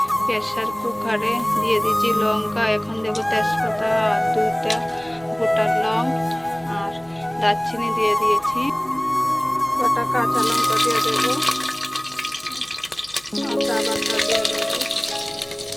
প্রেসার কুকারে দিয়ে দিয়েছি লঙ্কা, এখন দেবো তেজপাতা আর 2টা গোটা লং, আর দারচিনি দিয়ে দিয়েছি, কটা কাঁচা লঙ্কা দিয়ে দেবো, আদা বাটা দিয়ে দেবো,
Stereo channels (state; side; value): noise; right; hum, 29 dB below the sound